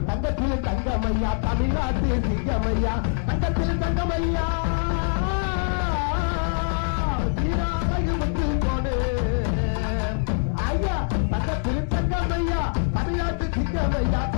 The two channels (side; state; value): right; silent; digital silence